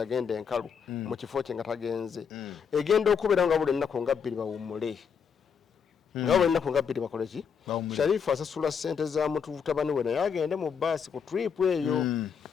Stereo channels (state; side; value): quieter; right; 6.8 dB